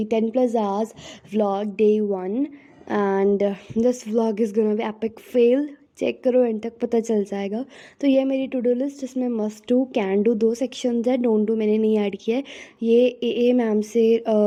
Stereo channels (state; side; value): identical; both; correlation 1.00